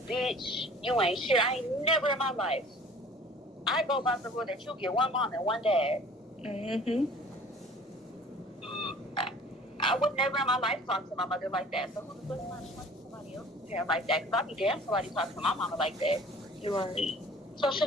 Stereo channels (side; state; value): both; normal; correlation 0.48